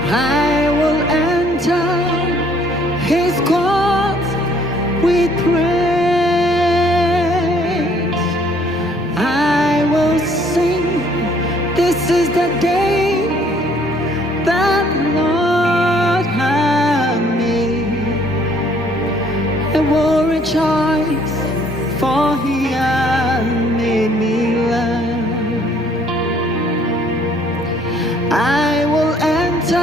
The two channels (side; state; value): both; normal; correlation 0.62